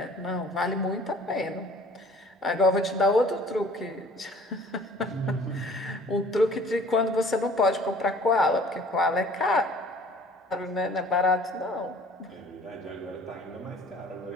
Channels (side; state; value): both; normal; correlation 0.51